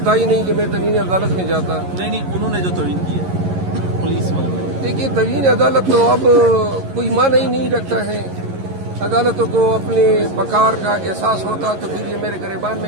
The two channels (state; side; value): late; left; 11 ms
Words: था ही नहीं कि मैं तवीन अदालत में जाता। नहीं, उन्होंने जो तवीन की है पुलिस वालों ने। देखिए, तवीन अदालत तो अब कोई माना ही नहीं रखता है। अदालतों को अपने वकार का एहसास होता तो फिर ये मेरे गिरबान